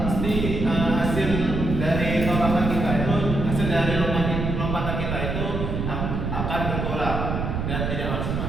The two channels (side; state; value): right; noise; rumble, 2 dB below the sound